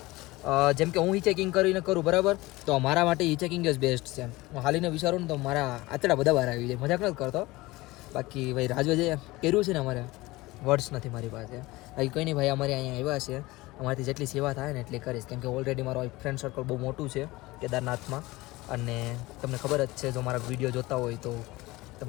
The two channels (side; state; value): right; quieter; 20.4 dB